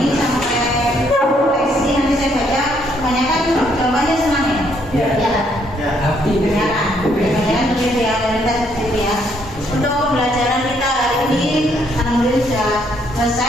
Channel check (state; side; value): normal; both; correlation 0.70